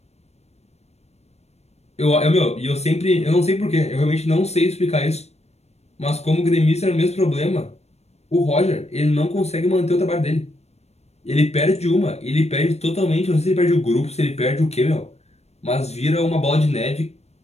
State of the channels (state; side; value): late; right; 0.31 ms